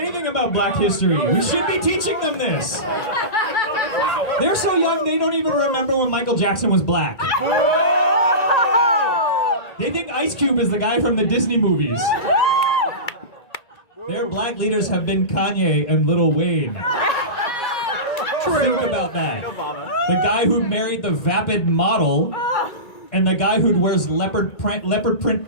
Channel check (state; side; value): late; right; 1.9 ms